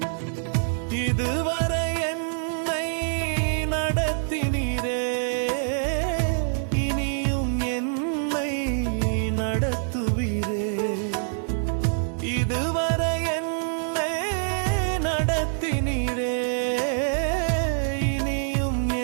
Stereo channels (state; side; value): silent; left; digital silence